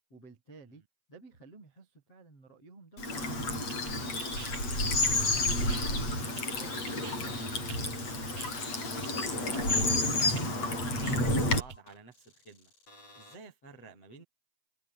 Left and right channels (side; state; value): right; late; 8.0 ms